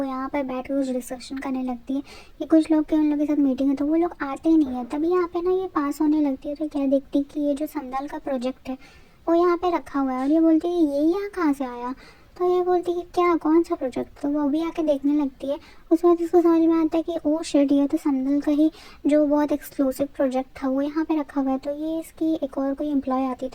यहाँ पर बैठ कर कुछ डिस्कशन करने लगती है कि कुछ लोग के उन लोग के साथ मीटिंग है तो वो लोग आते ही नहीं है। तभी यहाँ पे ना ये पास होने लगती है तो क्या देखती कि ये जो संदल का प्रोजेक्ट है वो यहाँ पे रखा हुआ है और ये बोलती है ये यहाँ कहाँ से आया। तो ये बोलती है कि क्या कौन सा प्रोजेक्ट। तो वो भी आके देखने लगती है। उसके बाद इसको समझ में आता है कि ओ शिट ये तो संदल का ही जो बहुत एक्सक्लूसिव प्रोजेक्ट था वो यहाँ पे रखा हुआ है। तो ये इसकी एक और कोई एम्प्लॉय आती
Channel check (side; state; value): both; identical; correlation 1.00